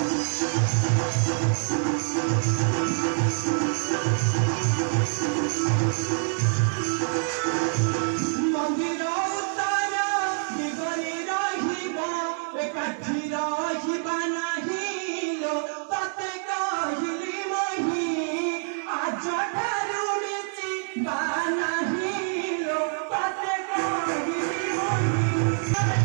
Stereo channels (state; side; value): silent; left; 61 dB below the other